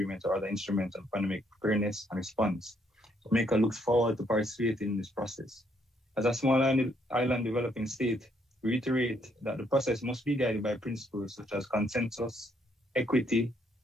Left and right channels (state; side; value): normal; both; correlation 0.71